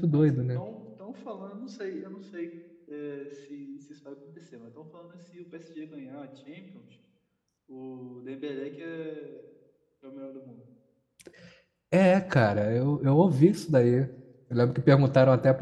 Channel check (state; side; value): identical; both; correlation 1.00